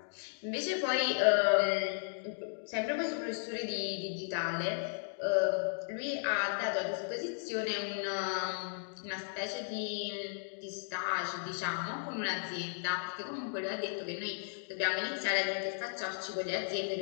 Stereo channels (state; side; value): silent; right; digital silence